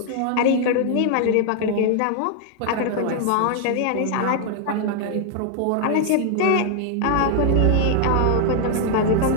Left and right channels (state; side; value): different; both; correlation 0.00